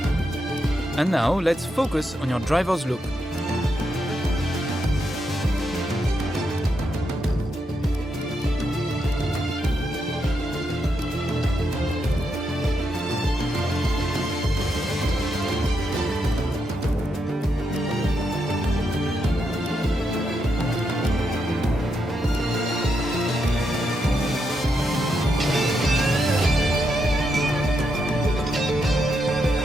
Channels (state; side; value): normal; both; correlation 0.82